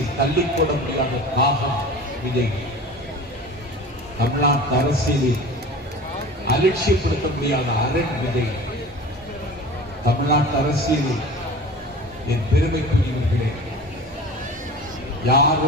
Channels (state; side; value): normal; both; correlation 0.38